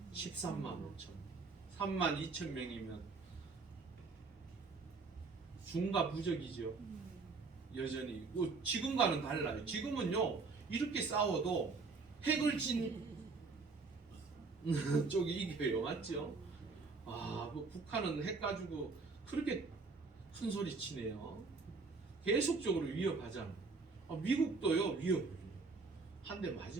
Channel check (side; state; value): left; quieter; 4.3 dB